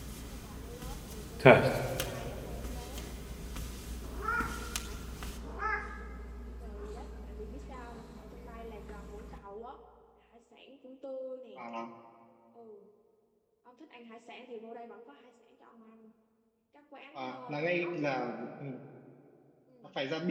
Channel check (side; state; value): both; identical; correlation 1.00